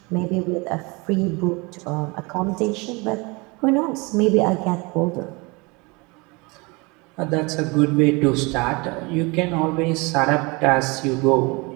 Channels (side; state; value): left; quieter; 27.0 dB